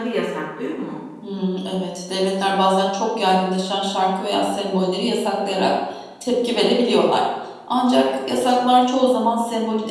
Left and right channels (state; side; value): identical; both; correlation 1.00